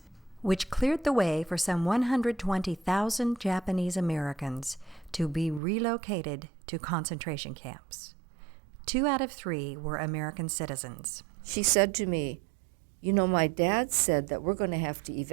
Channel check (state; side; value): drops out; left; at 5.6 s